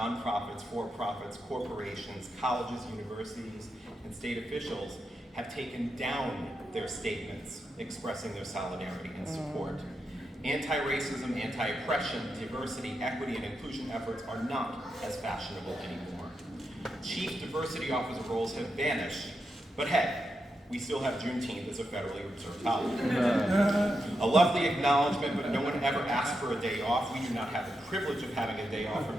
for-profits, corporations, colleges, universities, and state officials have taken down their statements expressing their solidarity and support. Anti-racism, anti-oppression, diversity, equity, and inclusion efforts are not as fashionable anymore. Chief diversity officer roles have vanished, but hey, we still have Juneteenth as a federally observed holiday. A lovely acknowledgement, but no one ever asked for a day off. We do not have the privilege of having a day off from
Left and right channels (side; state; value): both; normal; correlation 0.85